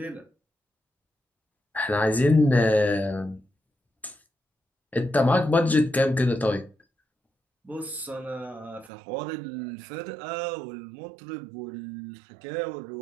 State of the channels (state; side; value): drops out; left; at 8.9 s